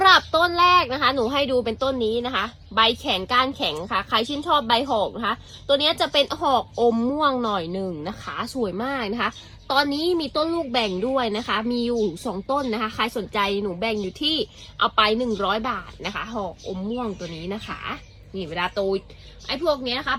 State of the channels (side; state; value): both; identical; correlation 1.00